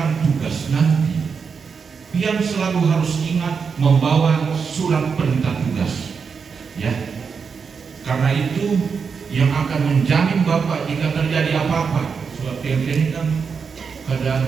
tugas nanti, pian selalu harus ingat membawa surat perintah tugas, ya. Karena itu yang akan menjamin Bapak jika terjadi apa-apa. Surat pian ini kan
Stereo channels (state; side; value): quieter; left; 5.8 dB